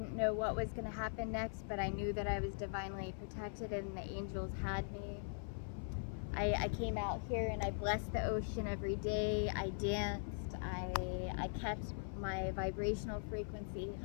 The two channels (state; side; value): silent; right; 50 dB below the other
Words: know what was going to happen next, but I knew that I was divinely protected and the angels had me. I came out here and I blessed the ocean every day. I danced. I kept my vibrational frequency